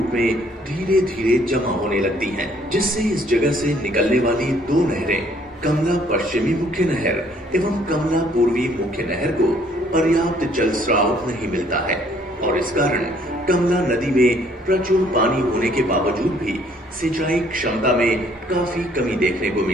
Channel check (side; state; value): both; normal; correlation 0.62